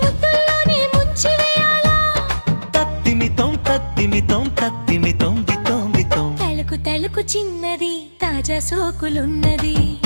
ముద్దుల్లోనే ముంచివేయాలా. తత్తిమితం తత్తిమితం తత్తిమితం బితం బితం. తళుకు తళుకు చిన్నది తాజా సోకులున్నది.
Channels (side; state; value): both; inverted; correlation -1.00